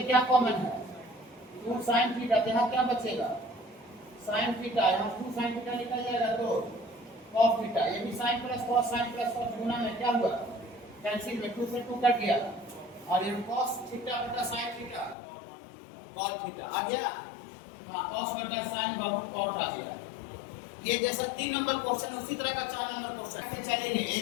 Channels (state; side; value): drops out; right; at 15.2 s